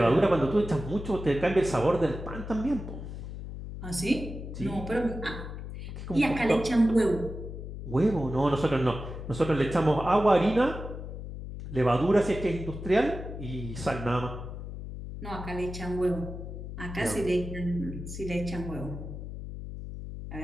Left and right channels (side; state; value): left; noise; hum, 9 dB below the sound